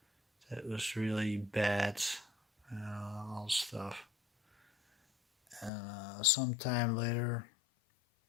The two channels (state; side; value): drops out; right; at 5.7 s